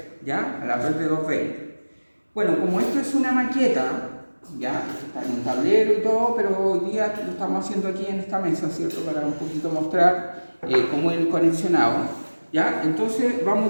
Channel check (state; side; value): inverted; both; correlation -1.00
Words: ¿ya? A la red de 220. Bueno, como esto es una maqueta, ya, está en un tablero y todo, pero hoy día lo estamos haciendo aquí en esta mesa, ¿cierto? Para un poquito mostrar cómo es el conexionado, ¿ya? Entonces vamos